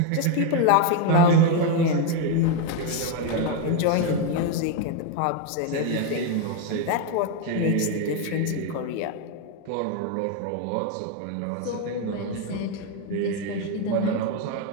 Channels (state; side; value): different; both; correlation 0.02